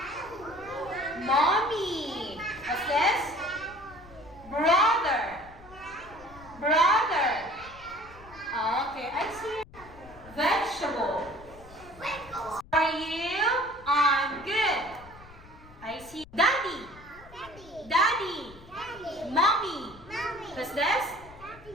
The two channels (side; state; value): left; noise; rumble, 20 dB below the sound